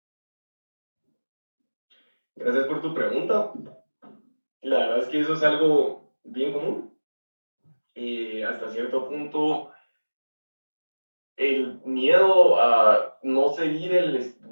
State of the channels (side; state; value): both; inverted; correlation -1.00